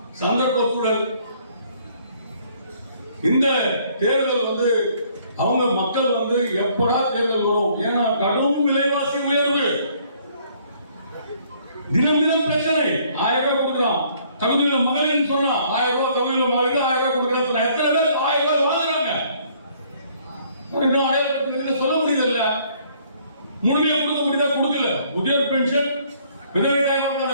சந்தர்ப்ப சூழல் இந்த தேர்தல் வந்து அவங்க மக்கள் வந்து எப்படா தேர்தல் வரும்? ஏன்னா கடும் விலைவாசி உயர்வு, தினம் தினம் பிரச்சனை. 1000 ரூபாய் கொடுக்கலாம், தகுதியுள்ள மகளிர் சொன்னா 1000 ரூபாய், தகுதியுள்ள மகளிர் 1000 ரூபாய் கொடுக்கலாம். எத்தனை பேர் 1000 ரூபாய் வாங்குறாங்க? அடையாளப்படுத்த சொல்ல முடியல. முழுமையா கொடுக்க முடியுதா? கொடுக்கல. முதியோர் பென்ஷன், விதவை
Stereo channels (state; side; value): inverted; both; correlation -0.62